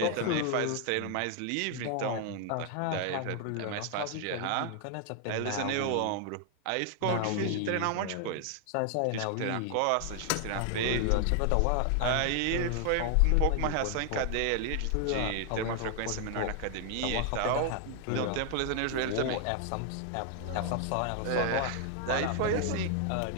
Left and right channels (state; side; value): different; both; correlation 0.00